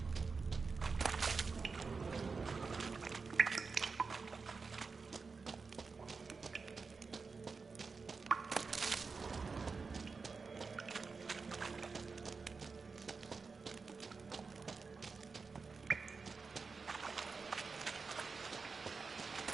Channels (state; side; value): quieter; left; 4.7 dB